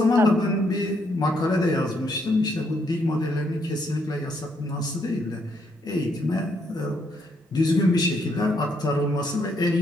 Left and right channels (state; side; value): normal; both; correlation 0.74